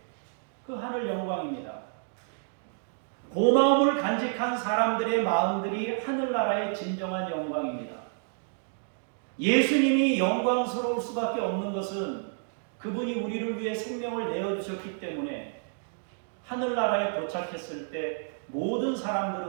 그 하늘 영광입니다. 고마움을 간직한 사람들의 마음들이 하늘나라의 진정한 영광입니다. 예수님이 영광스러울 수밖에 없는 것은 그분이 우리를 위해 생명을 내어주셨기 때문에 하늘나라에 도착했을 때 모든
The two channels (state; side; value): silent; left; 58 dB below the other